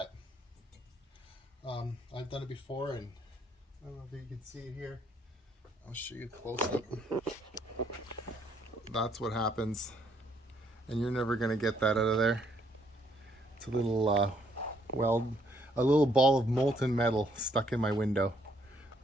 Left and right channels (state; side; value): normal; both; correlation 0.69